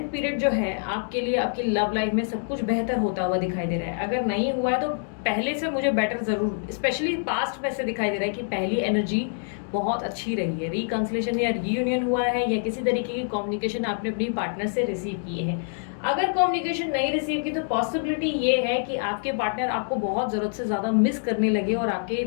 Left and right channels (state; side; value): silent; right; digital silence